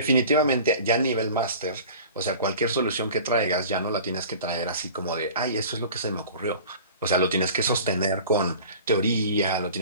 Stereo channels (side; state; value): both; inverted; correlation -0.42